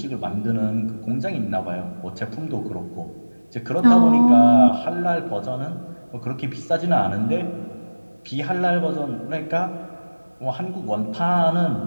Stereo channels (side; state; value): both; inverted; correlation -1.00